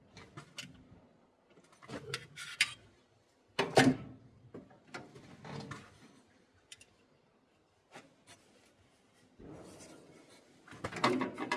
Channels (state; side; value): identical; both; correlation 1.00